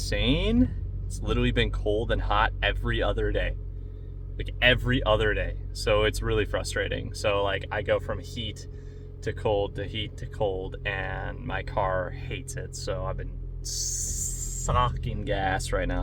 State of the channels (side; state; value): both; identical; correlation 1.00